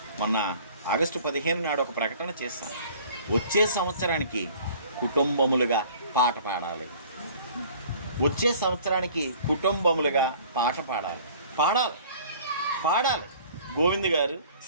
మొన్న ఆగస్టు 15 నాడు ఒక ప్రకటన చేశాను. వచ్చే సంవత్సరానికి కుటుంబములుగా పాట పాడాలి, వచ్చే సంవత్సరానికి కుటుంబములుగా పాట పాడాలి. గోవింద్ గారు,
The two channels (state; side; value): inverted; both; correlation -0.50